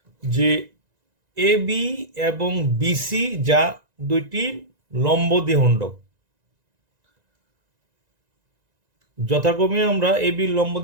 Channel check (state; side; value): late; left; 1.9 ms